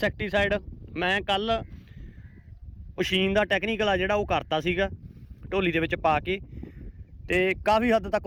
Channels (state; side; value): identical; both; correlation 1.00